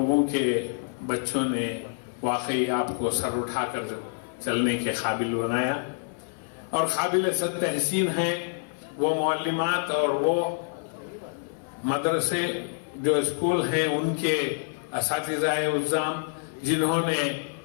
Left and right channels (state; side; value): silent; right; 55 dB below the other